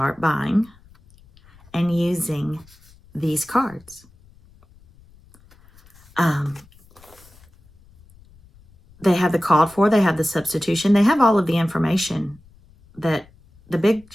buying and using these cards. They have the called for, they have the substitution, they have all of the information that the big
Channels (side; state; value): left; noise; rumble, 28 dB below the sound